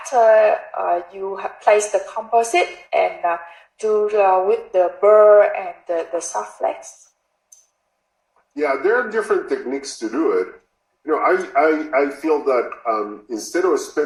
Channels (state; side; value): identical; both; correlation 1.00